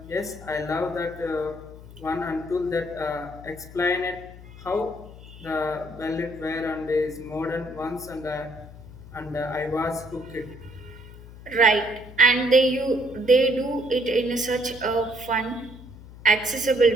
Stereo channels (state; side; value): noise; left; hum, 17 dB below the sound